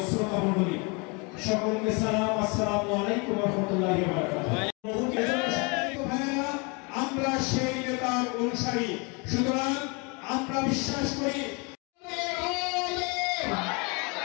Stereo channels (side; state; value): right; quieter; 31.0 dB